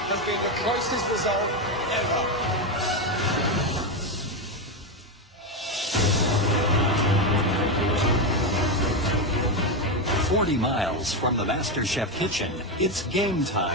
has been the closest result ever. 40 miles from the MasterChef kitchen, it's game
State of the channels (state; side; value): normal; both; correlation 0.10